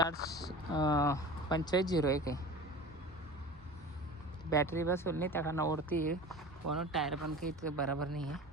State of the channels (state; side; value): normal; both; correlation 0.35